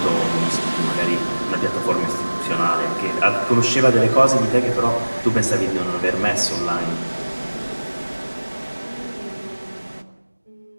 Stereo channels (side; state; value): both; inverted; correlation -1.00